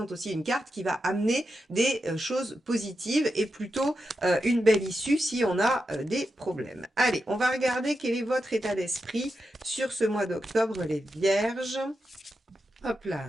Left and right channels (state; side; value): normal; both; correlation 0.88